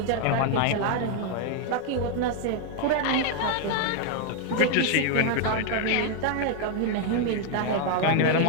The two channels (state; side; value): different; both; correlation 0.00